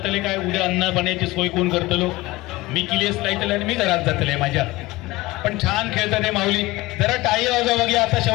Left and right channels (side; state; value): right; quieter; 20.0 dB